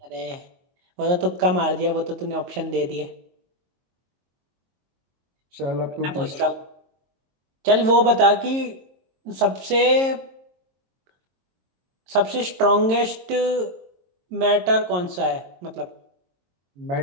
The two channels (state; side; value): late; left; 22 ms